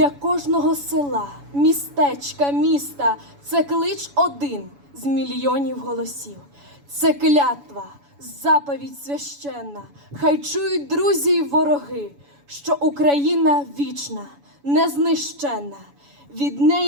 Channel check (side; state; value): left; late; 7.1 ms